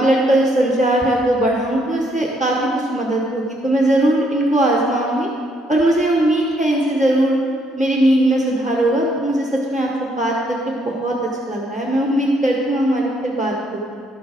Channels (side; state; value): both; normal; correlation 0.71